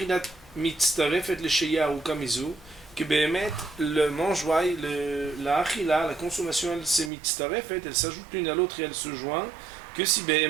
mitztarefet lesheya ou kamizu, que béhémet, le mangeoire, la achila, la consommation, elle se mitztarefet, elle s'ajoute l'une à l'autre et elle se joint, que si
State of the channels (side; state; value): left; drops out; at 7.1 s